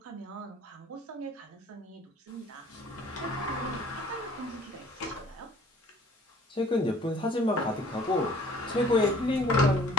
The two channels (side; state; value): both; normal; correlation 0.52